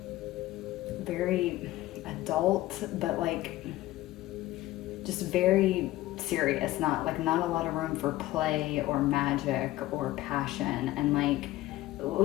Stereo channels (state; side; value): quieter; right; 16.6 dB